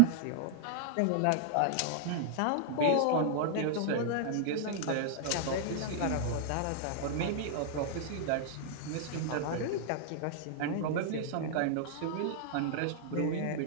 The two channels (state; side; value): different; both; correlation -0.01